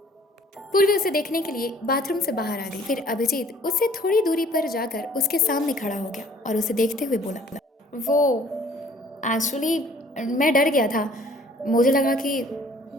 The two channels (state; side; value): normal; both; correlation 0.56